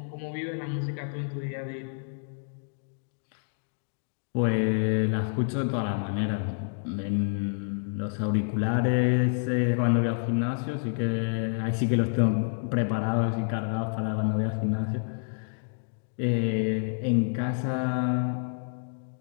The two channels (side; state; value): right; silent; digital silence